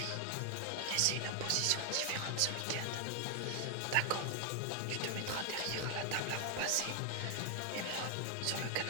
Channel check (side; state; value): both; different; correlation 0.00